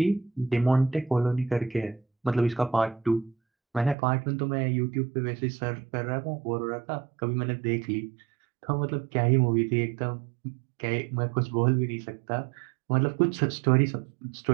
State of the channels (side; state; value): left; drops out; at 4.0 s